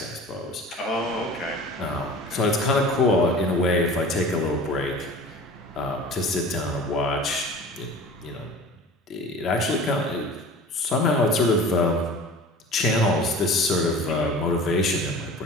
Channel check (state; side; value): normal; both; correlation 0.40